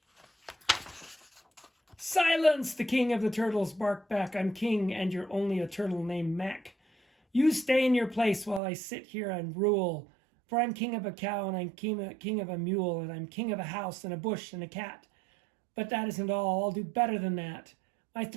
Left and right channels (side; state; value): left; drops out; at 8.6 s